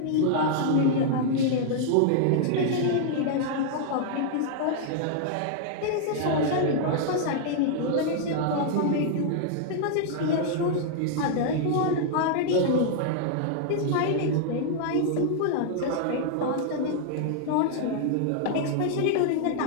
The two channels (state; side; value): different; both; correlation -0.01